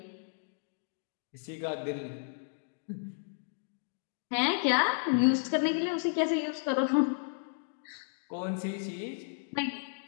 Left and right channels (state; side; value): silent; right; digital silence